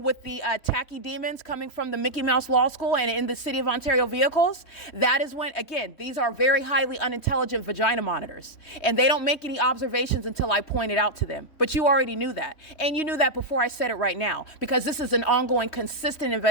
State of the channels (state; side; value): late; right; 3.1 ms